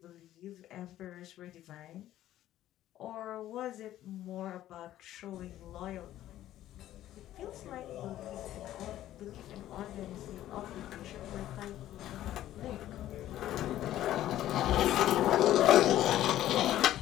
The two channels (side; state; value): right; quieter; 13.3 dB